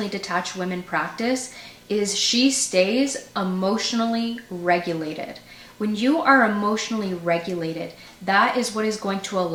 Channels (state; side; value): identical; both; correlation 1.00